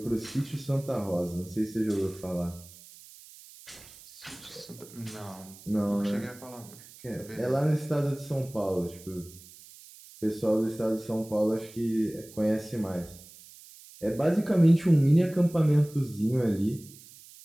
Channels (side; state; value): right; noise; hiss, 20 dB below the sound